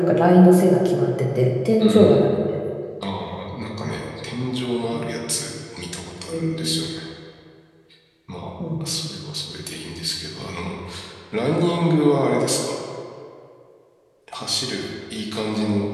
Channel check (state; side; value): identical; both; correlation 1.00